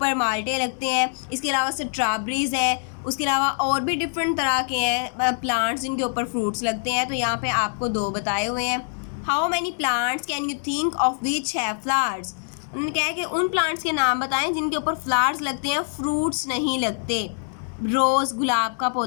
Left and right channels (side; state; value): right; silent; digital silence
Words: माल्टे लगते हैं। इसके अलावा स्ट्रॉबेरीज है, उसके अलावा और भी डिफरेंट तरह के हैं प्लांट्स जिनके ऊपर फ्रूट्स लगते हैं। तो यहाँ पे आपको 2 बताए हुए हैं। How many plants can you think of which have flowers. उन्होंने कहा है कि उन प्लांट्स के नाम बताएं जिनके ऊपर फ्लावर्स लगते हैं, फ्रूट्स नहीं लगते। रोज़, गुलाब का